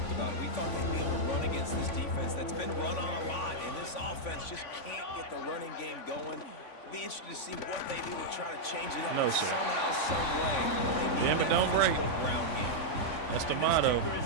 about it. We thought they'd be able to run against this defense that's been run on a lot, and this offense just can't get the running game going. Be interested to see what they do to try to change it up somehow, some way. Damn it, don't break. Ground game. That's the motto. This kicker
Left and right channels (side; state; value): right; late; 3.5 ms